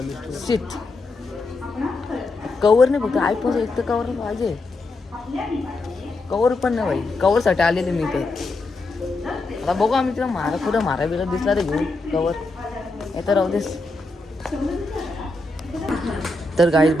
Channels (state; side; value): quieter; right; 3.1 dB